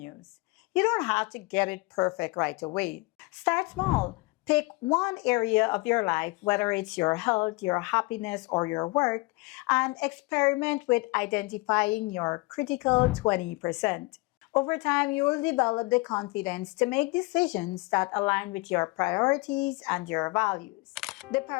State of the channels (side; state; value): right; quieter; 25.0 dB